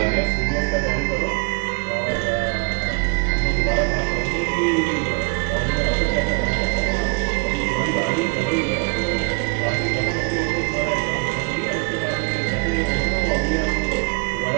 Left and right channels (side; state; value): left; quieter; 32.4 dB